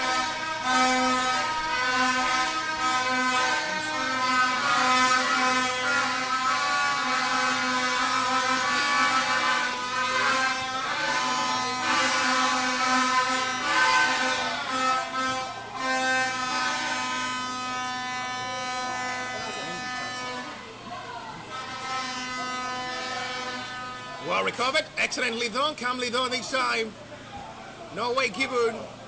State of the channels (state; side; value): identical; both; correlation 1.00